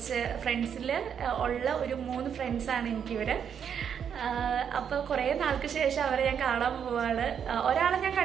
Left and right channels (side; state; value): left; quieter; 7.9 dB